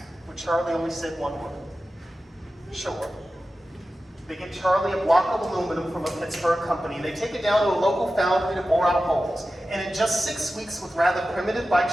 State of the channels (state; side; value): normal; both; correlation 0.94